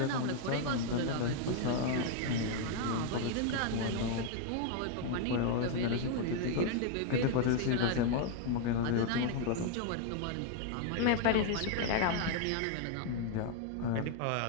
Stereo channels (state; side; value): different; both; correlation 0.00